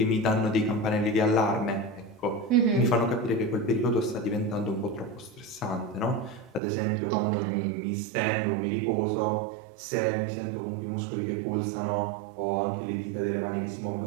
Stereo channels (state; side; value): drops out; left; at 6.6 s